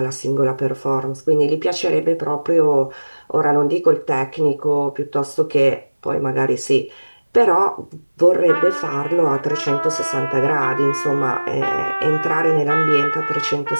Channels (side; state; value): both; inverted; correlation -1.00